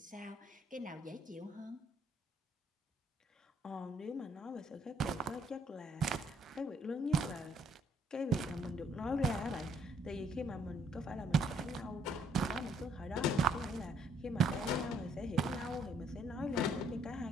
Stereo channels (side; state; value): both; normal; correlation 0.67